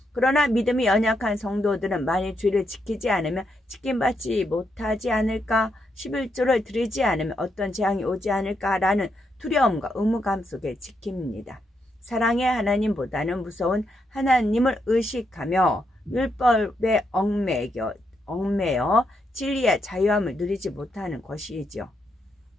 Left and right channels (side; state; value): both; normal; correlation 0.80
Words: 그러나 믿음이 연약한 성도들은 만일 주일을 지키지 않으면 지킴받지 못하지 않을까, 11조를 드리지 않으면 어떤 재앙이 오지 않을까라는 두려움과 의무감 속에 지킵니다. 사랑의 하나님보다는 무서운 하나님을 의식하며 율법에 얽매여 진리의 자유함을 누리지 못하는 것이지요.